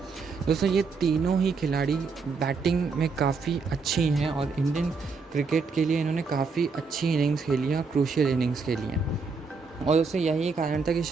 दोस्तों ये तीनों ही खिलाड़ी बैटिंग में काफ़ी अच्छी हैं और इंडियन क्रिकेट के लिए इन्होंने काफ़ी अच्छी इनिंग्स खेली हैं और क्रूशियल इनिंग्स खेली हैं। और दोस्तों यही कारण था कि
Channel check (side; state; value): left; quieter; 4.7 dB